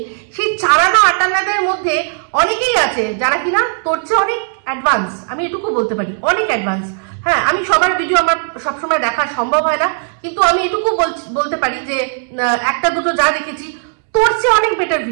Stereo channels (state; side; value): silent; left; 69 dB below the other